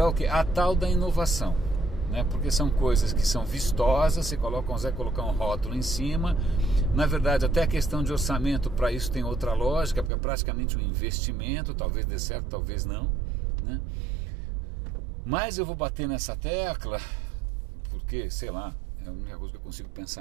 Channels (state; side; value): drops out; left; at 10.1 s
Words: o quê? A tal da inovação, né? Porque são coisas que são vistosas, você consegue colocar um rótulo em cima. Na verdade, até a questão de orçamento para isso tem outra lógica, porque é praticamente um investimento, talvez dê certo, talvez não, né? Mas eu vou bater nessa tecla porque, sei lá, é a única coisa que eu consigo